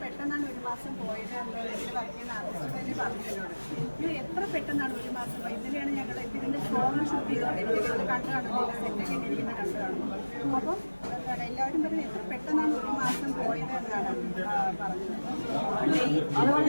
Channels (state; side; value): inverted; both; correlation -1.00